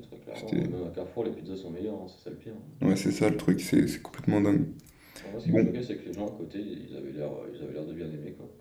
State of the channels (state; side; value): identical; both; correlation 1.00